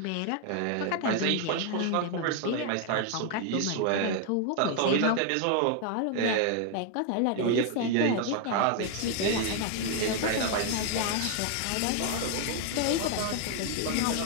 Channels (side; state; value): both; different; correlation 0.00